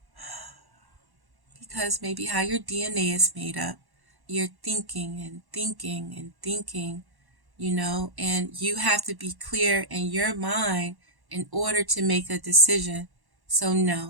because maybe how your DNA is made up, you're thinking and thinking and thinking, and you have to be clear in your mind in order to make a decision. So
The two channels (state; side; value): late; left; 1.1 ms